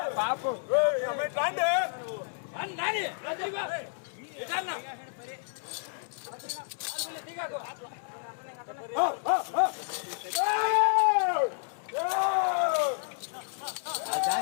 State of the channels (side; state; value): right; silent; 57 dB below the other